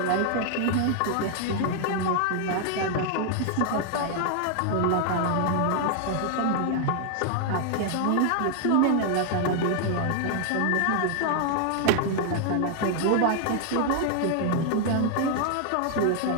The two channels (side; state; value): both; different; correlation 0.00